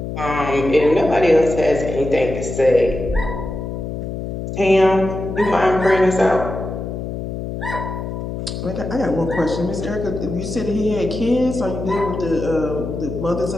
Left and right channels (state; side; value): noise; left; hum, 6 dB below the sound